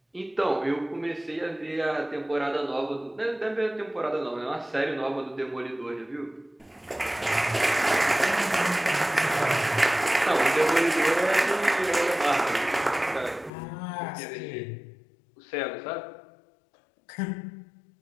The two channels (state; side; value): drops out; right; at 13.5 s